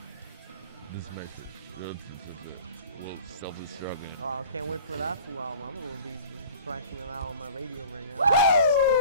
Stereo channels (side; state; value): both; inverted; correlation -0.44